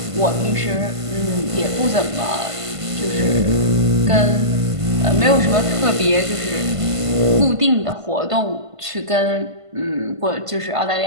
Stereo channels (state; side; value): late; left; 1.5 ms